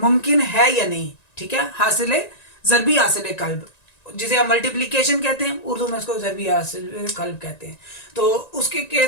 मुमकिन है या नहीं। ठीक है, हासिल ज़रबी हासिल कल्ब, जिसे हम मल्टीप्लिकेशन कहते हैं, उर्दू में उसको ज़रबी हासिल कल्ब कहते हैं। तो उसके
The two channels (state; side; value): late; right; 1.9 ms